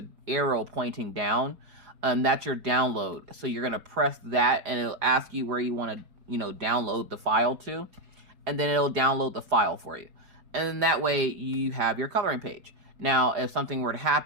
arrow pointing down, and that's your download. So you're going to press that, and it'll ask you where you want to, download the file to. and then it'll download the file for you. And then that way you have your coloring page. Now, if something were to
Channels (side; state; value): left; late; 4.7 ms